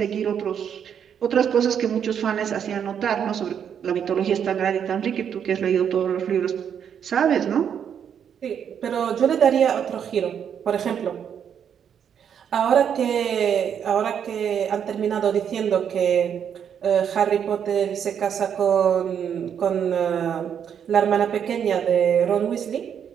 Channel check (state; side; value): quieter; left; 8.2 dB